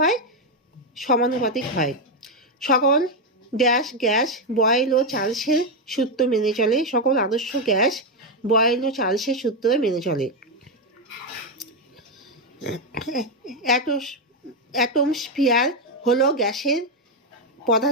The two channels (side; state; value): both; normal; correlation 0.05